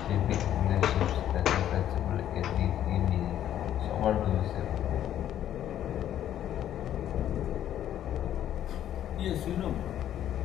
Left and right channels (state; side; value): quieter; right; 11.2 dB